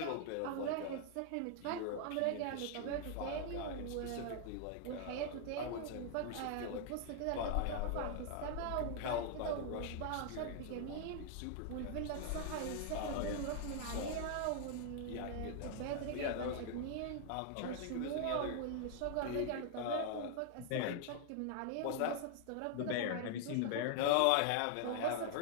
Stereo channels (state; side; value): different; both; correlation 0.00